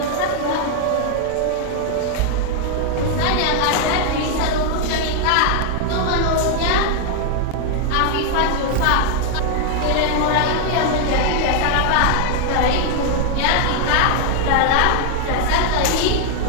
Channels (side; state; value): both; different; correlation 0.00